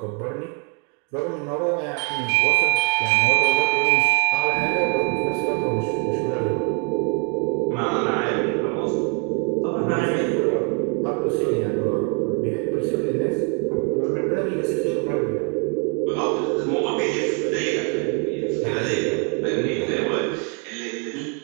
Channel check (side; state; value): left; quieter; 36.8 dB